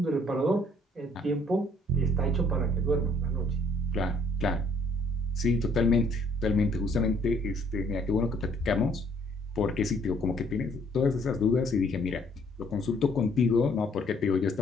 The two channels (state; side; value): normal; both; correlation 0.62